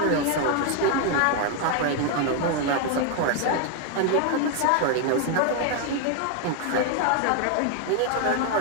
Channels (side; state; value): both; different; correlation 0.01